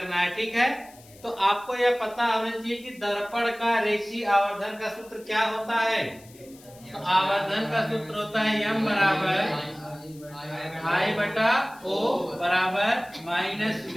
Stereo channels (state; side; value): noise; left; hiss, 24 dB below the sound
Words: है। ठीक है, तो आपको यह पता होना चाहिए कि दर्पण का रेखीय आवर्धन का सूत्र क्या होता है। तो आवर्धन का सूत्र होता है m बराबर I बटा O बराबर माइनस